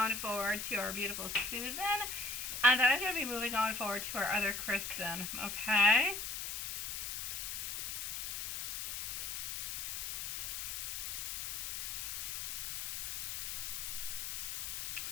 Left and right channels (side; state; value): left; noise; hiss, 4 dB below the sound